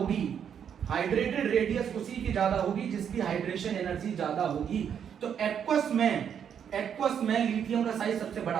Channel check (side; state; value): left; quieter; 8.2 dB